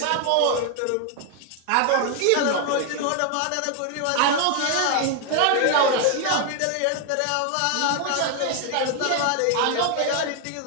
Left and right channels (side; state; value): both; different; correlation 0.00